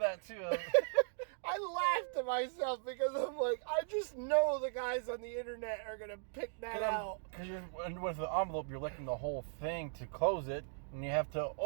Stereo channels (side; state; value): left; silent; digital silence